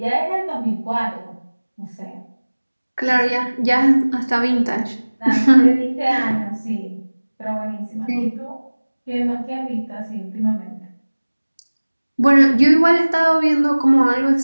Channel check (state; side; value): inverted; both; correlation -1.00